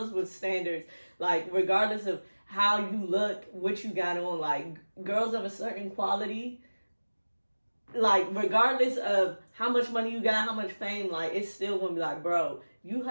with standards, like regardless of how you look, what you got on, like girls of a certain quality. Like regardless of how much money you got, how much fame, like it's still gonna be like, bro, you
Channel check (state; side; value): inverted; both; correlation -1.00